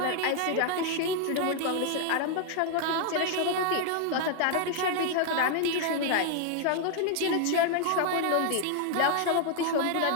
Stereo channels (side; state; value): both; different; correlation 0.00